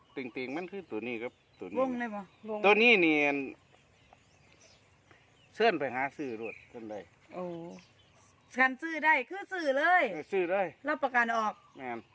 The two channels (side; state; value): both; identical; correlation 1.00